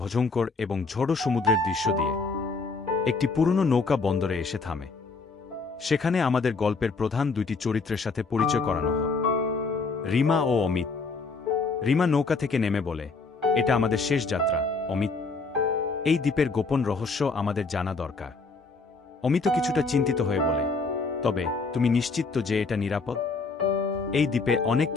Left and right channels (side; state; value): right; quieter; 4.2 dB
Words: এবং ঝড়ো সমুদ্রের দৃশ্য দিয়ে। একটি পুরনো নৌকা বন্দরে এসে থামে। সেখানে আমাদের গল্পের প্রধান দুইটি চরিত্রের সাথে পরিচয় করানো হয়, রিমা ও অমিত। রিমা নৌকা থেকে নেমে বলে, এটা আমাদের শেষ যাত্রা অমিত। এই দ্বীপের গোপন রহস্য আমাদের জানা দরকার। অমিত কিছুটা চিন্তিত হয়ে বলে, তবে তুমি নিশ্চিত তো যে এটা নিরাপদ? এই দ্বীপে অনেক